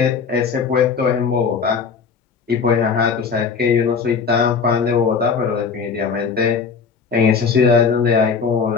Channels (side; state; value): right; quieter; 5.7 dB